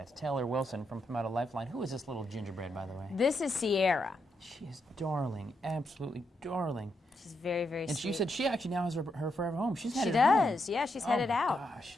Taylor Wilson from Pawmetto Lifeline. Who is this little gingerbread, by the way? This is Sierra. She is darling, absolutely darling. She's very, very and sweet. she said she actually now has her forever home. She's headed She does. Yeah, she's headed out. Gosh,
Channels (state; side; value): normal; both; correlation 0.81